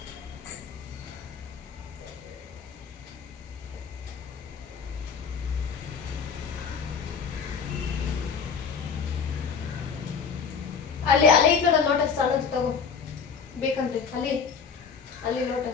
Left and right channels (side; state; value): right; quieter; 6.2 dB